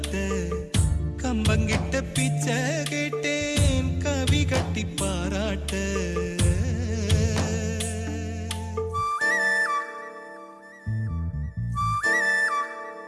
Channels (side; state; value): both; identical; correlation 1.00